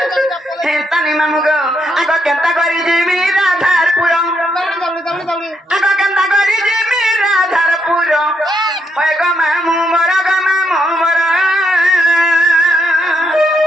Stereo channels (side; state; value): both; normal; correlation 0.78